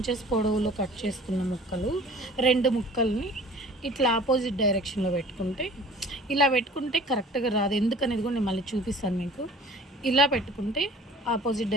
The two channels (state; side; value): normal; both; correlation 0.47